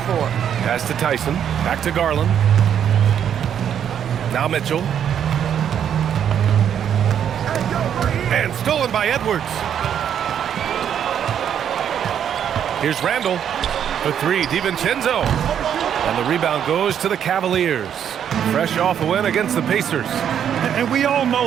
for. Pass to Tyson, back to Garland. Now Mitchell. And stolen by Edwards. Here's Randall. The 3, DiVincenzo. And the rebound goes to the Cavaliers. Fresh off a win against the Pacers. And we all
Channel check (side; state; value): left; quieter; 9.0 dB